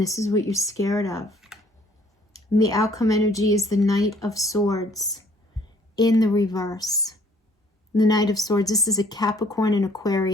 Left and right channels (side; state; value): both; normal; correlation 0.60